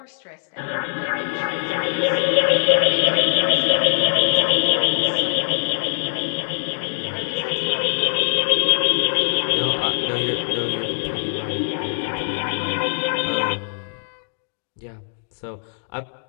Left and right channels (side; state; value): right; silent; digital silence